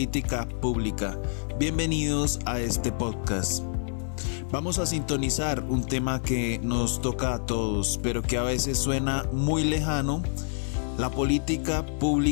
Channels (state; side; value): silent; right; 60 dB below the other